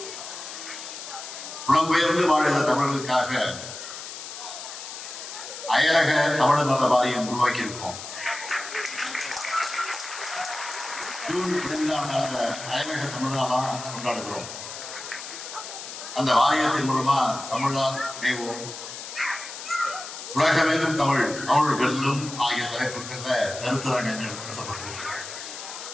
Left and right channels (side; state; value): left; noise; hiss, 10 dB below the sound